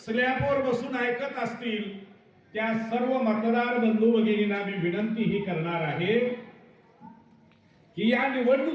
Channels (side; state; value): both; identical; correlation 1.00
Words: स्लॅबवर बसून ऐकत असतील, त्या सर्व मतदार बंधू भगिनींना मी विनंती ही करणार आहे की या